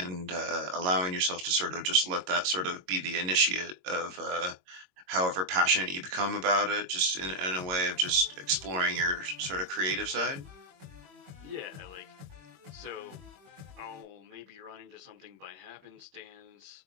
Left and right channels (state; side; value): late; left; 21 ms